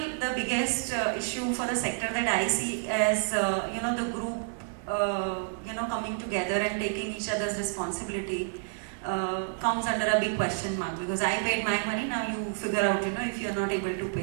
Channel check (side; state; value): left; silent; digital silence